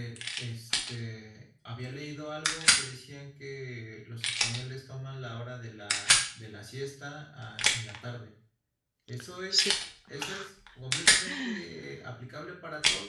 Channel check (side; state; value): both; identical; correlation 1.00